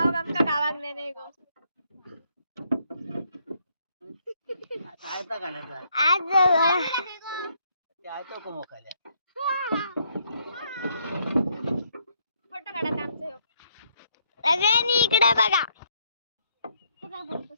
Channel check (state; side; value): inverted; both; correlation -0.71